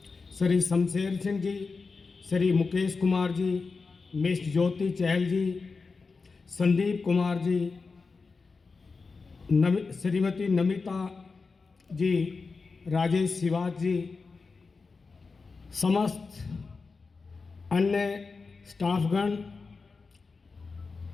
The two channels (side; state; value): right; quieter; 4.4 dB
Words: श्री शमशेर सिंह जी, श्री मुकेश कुमार जी, मिस ज्योति चहल जी, संदीप कुमार जी, श्रीमती नमिता जी, राजेश शिवाज जी, समस्त अन्य स्टाफगण,